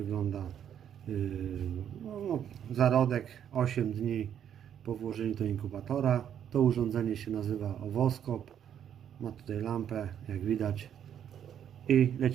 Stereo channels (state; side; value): quieter; left; 9.3 dB